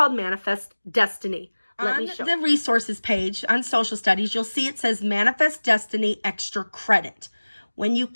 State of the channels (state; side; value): inverted; both; correlation -1.00